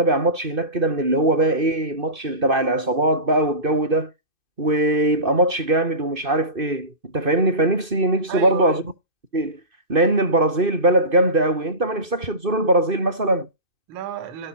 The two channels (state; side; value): late; left; 2.6 ms